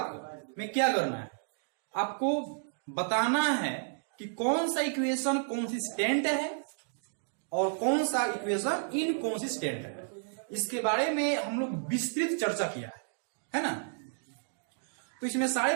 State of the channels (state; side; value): silent; left; digital silence